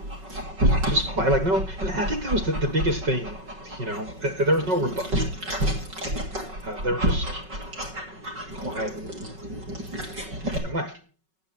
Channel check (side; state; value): left; late; 5.3 ms